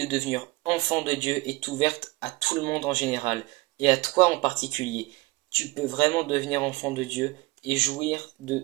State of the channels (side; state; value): left; quieter; 22.9 dB